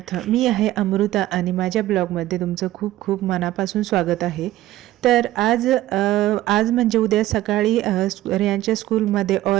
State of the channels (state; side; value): quieter; left; 15.0 dB